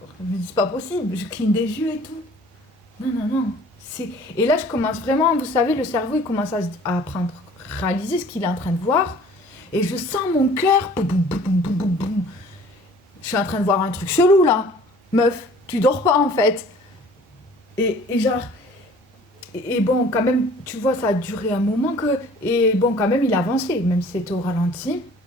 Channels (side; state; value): both; normal; correlation 0.51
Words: Je me dis, c'est pas possible, je cligne des yeux et tout. Non, non, non. Et là, je commence vraiment, vous savez, le cerveau, il commence à réaliser ce qu'il est en train de voir. Et je sens mon cœur. Boum, boum, boum, boum, boum, boum. Je suis en train de voir un truc chelou là. Meuf, tu dors pas en fait. Et genre. Et bon, quand même, tu vois, ça a duré un moment que. Et bon, quand même, il a avancé, même si c'était au ralenti.